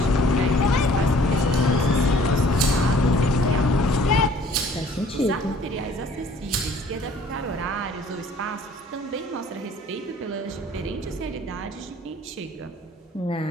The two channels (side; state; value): both; normal; correlation 0.55